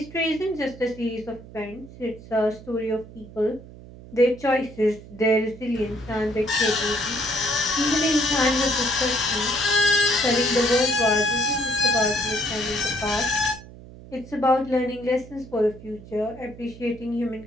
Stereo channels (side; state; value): right; noise; hum, 17 dB below the sound